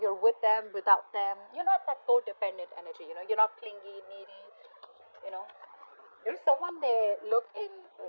with them, without them, you're not that codependent energy. You're not clingy, needy. You're someone they look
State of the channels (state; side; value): inverted; both; correlation -1.00